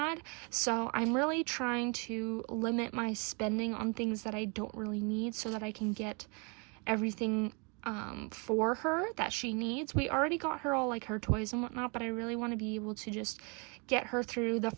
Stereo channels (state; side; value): quieter; left; 33.3 dB